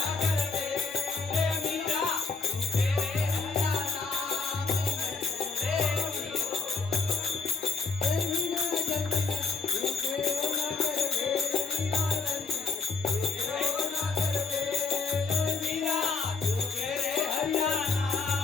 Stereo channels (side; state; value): right; quieter; 4.6 dB